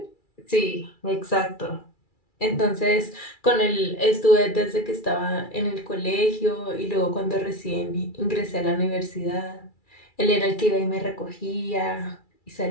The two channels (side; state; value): right; late; 2.3 ms